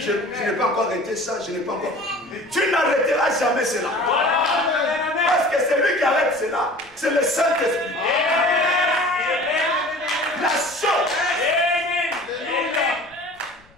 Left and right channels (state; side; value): noise; left; rumble, 30 dB below the sound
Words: n'ai pas encore arrêté ça, je n'ai pas encore. Tu n'arrêteras jamais cela. Parce que celui qui arrête cela, c'est le Saint-Esprit. La chose,